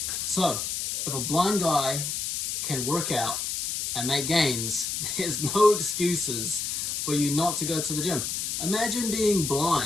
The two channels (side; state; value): left; noise; hiss, 2 dB below the sound